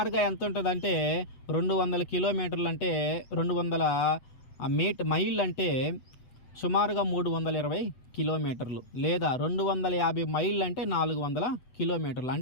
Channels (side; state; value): right; late; 8.0 ms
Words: ఎంత ఉంటుందంటే 200 కిలోమీటర్లు అంటే 200 మైళ్ళు అంటే సుమారుగా 320 కిలోమీటర్లు, లేదా 250 మైళ్ళు అంటే 400 కిలోమీటర్లు.